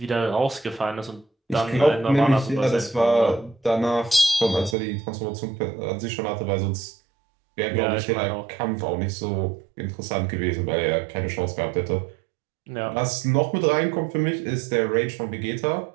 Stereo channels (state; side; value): drops out; left; at 4.8 s